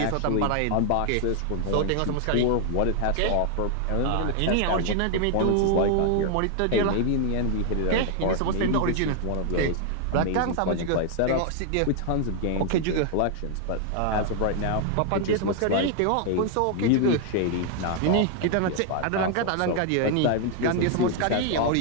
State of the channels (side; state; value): both; different; correlation 0.00